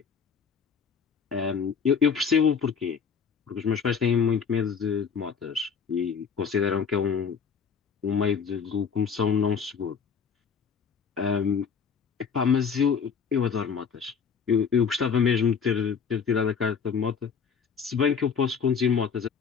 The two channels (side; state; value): right; quieter; 6.4 dB